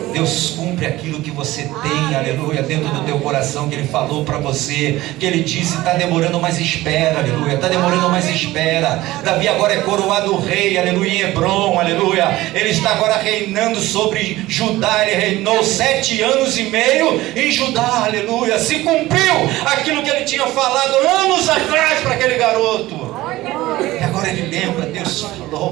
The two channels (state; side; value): quieter; left; 17.5 dB